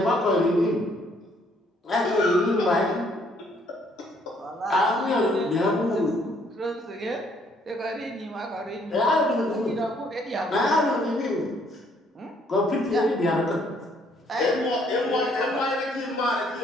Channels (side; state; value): both; normal; correlation 0.66